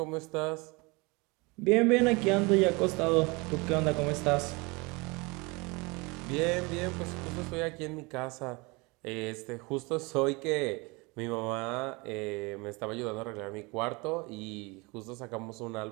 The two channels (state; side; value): quieter; left; 26.6 dB